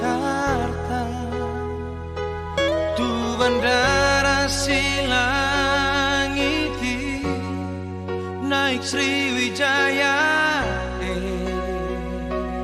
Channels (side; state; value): both; identical; correlation 1.00